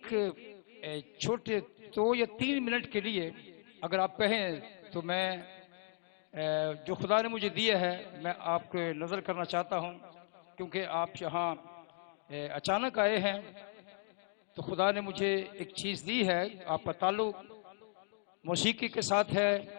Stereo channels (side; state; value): right; silent; 54 dB below the other